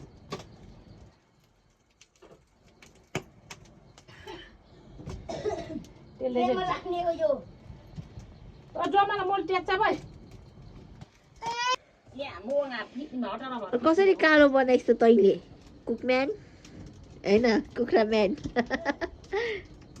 कसरी कालो बनाइस् त तैले कुकम्यान हैन कुखुरा म्यान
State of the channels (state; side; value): identical; both; correlation 1.00